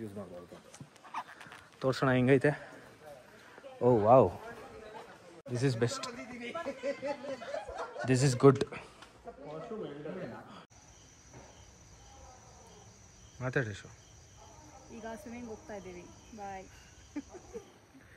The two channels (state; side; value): identical; both; correlation 1.00